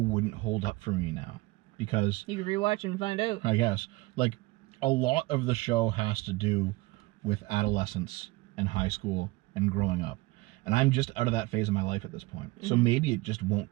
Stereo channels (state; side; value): quieter; left; 21.5 dB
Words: hold up for me now. Because You can rewatch and find out. I guess, like, a lot of the show has to do with adolescence and high school and growing up. And I'm just out of that phase of my life at this point. So maybe it just won't